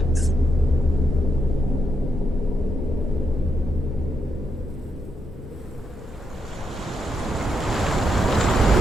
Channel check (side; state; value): both; normal; correlation 0.81